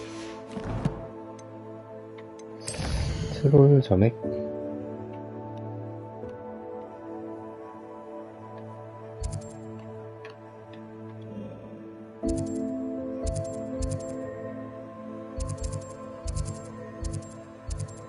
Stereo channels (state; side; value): identical; both; correlation 1.00